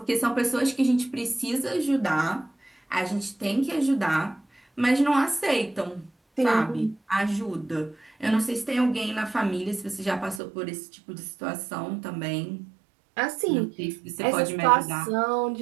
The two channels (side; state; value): left; drops out; at 10.4 s